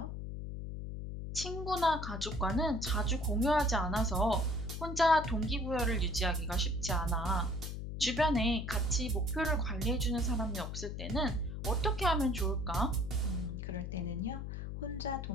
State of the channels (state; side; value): noise; left; hum, 6 dB below the sound